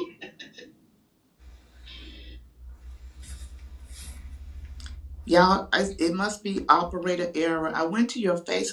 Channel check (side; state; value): both; identical; correlation 1.00